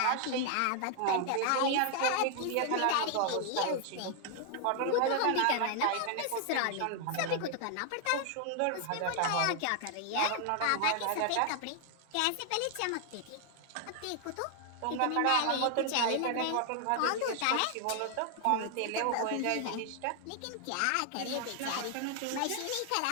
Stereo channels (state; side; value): different; both; correlation 0.00